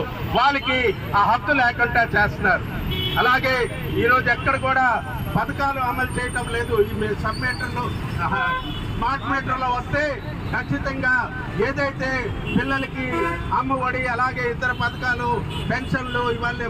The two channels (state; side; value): identical; both; correlation 1.00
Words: వాళ్ళకి ఆ హక్కు లేకుండా చేస్తున్నారు. అలాగే ఈరోజు ఎక్కడ కూడా పథకాలు అమలు చేయటం లేదు. ఈ సబ్ మీటర్లు స్మార్ట్ మీటర్లో వస్తే ఖచ్చితంగా ఏదైతే పిల్లలకి అమ్మ ఒడి అలాగే ఇతర పథకాలు పెన్షన్లు ఇవన్నీ